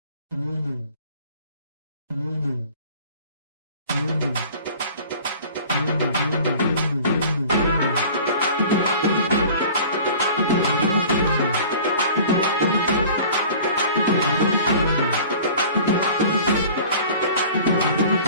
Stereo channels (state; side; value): inverted; both; correlation -0.44